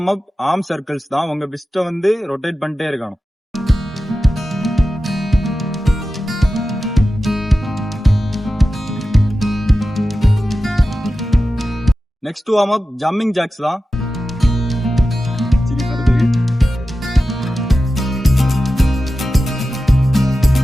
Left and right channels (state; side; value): normal; both; correlation 0.93